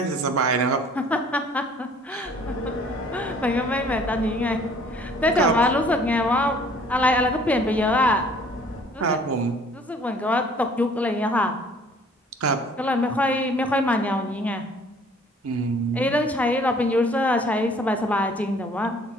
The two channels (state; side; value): normal; both; correlation 0.55